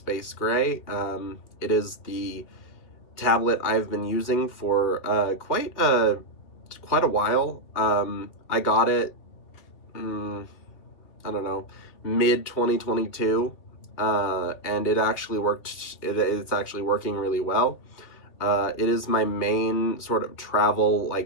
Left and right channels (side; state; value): right; late; 2.7 ms